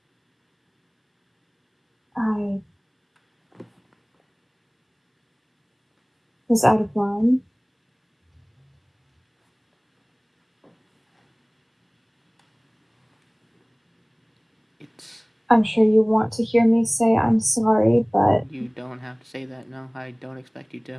I was out of line. It's. I'm sure you want to hear me say I'm sorry, but You don't have to say that. No, I don't expect you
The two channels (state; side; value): identical; both; correlation 1.00